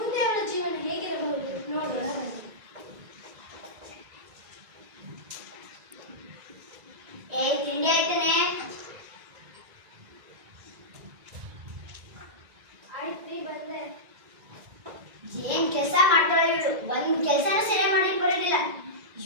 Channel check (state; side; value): late; left; 1.9 ms